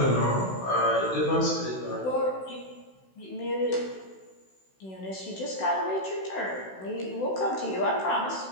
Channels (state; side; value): late; right; 16 ms